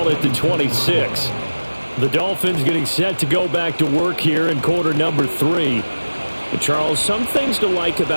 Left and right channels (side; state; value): both; inverted; correlation -1.00